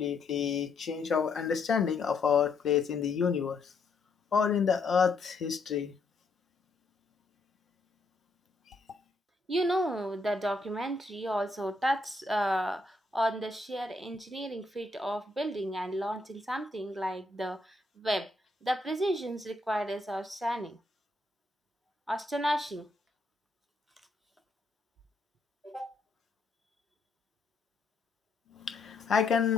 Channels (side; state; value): right; quieter; 3.2 dB